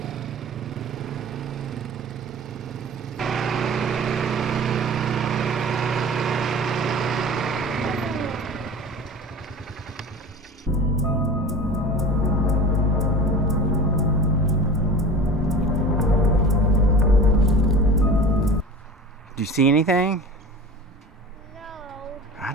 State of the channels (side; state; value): both; normal; correlation 0.36